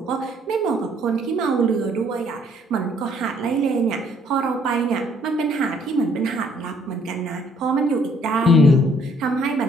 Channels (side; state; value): both; normal; correlation 0.64